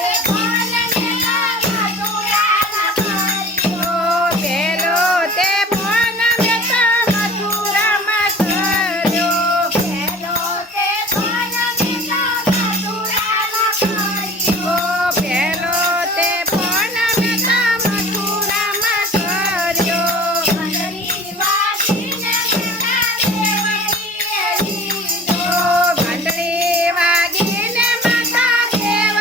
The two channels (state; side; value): normal; both; correlation 0.44